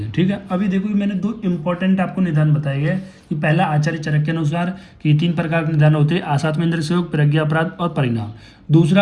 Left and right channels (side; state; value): both; identical; correlation 1.00